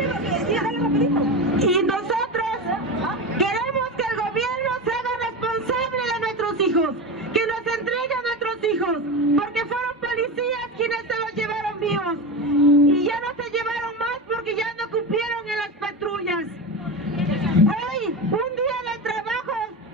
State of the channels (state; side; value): normal; both; correlation 0.22